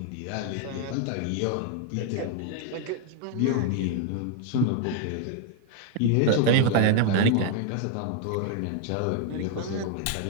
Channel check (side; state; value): both; different; correlation 0.00